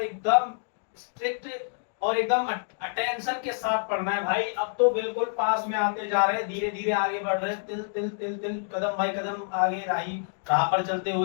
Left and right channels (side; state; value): right; silent; digital silence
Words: एकदम स्ट्रिक्ट और एकदम अटेंशन के साथ पढ़ना है भाई। अब तो बिल्कुल पास में आते जा रहे हैं, धीरे धीरे आगे बढ़ रहे हैं, तिल तिल तिल तिल कदम बाई कदम आगे राह पर चलते